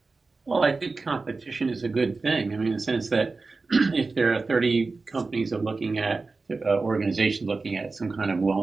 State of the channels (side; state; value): left; quieter; 3.9 dB